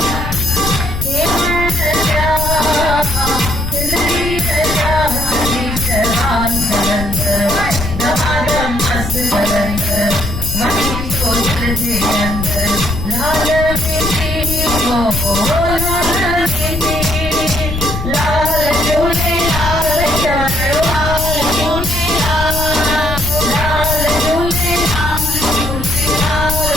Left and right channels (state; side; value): noise; left; rumble, 5 dB below the sound